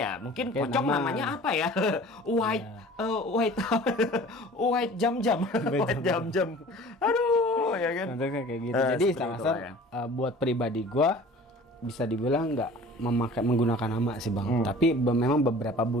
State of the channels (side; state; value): both; normal; correlation 0.45